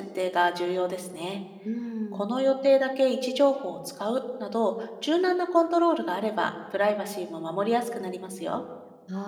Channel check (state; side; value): identical; both; correlation 1.00